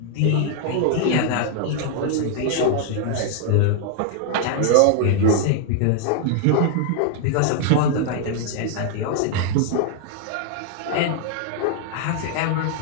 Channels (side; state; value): both; different; correlation 0.00